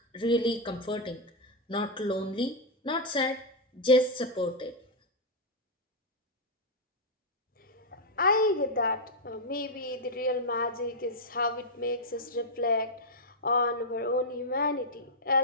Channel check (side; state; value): both; normal; correlation -0.03